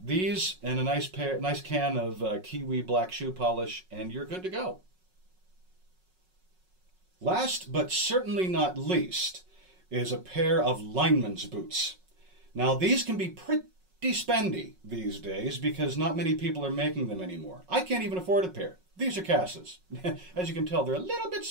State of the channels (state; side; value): late; left; 5.4 ms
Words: these and a nice can of Kiwi black shoe polish, and you're good to go. Last but certainly not least is a pair of Linemen's Boots. Now these can be pretty spendy these days because not many people are making them anymore. I can't even afford a pair. These are Cass's. As you can tell, they're a little bit